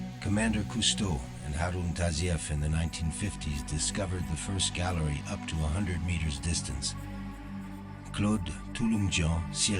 Commander Cousteau and Harun Tazieff in the 1950s discovered the first gallery up to 100 meters distance. Claude Touloumjian,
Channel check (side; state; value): both; identical; correlation 1.00